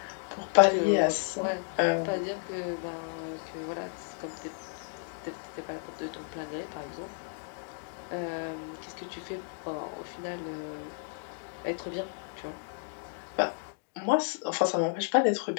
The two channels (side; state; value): right; silent; 56 dB below the other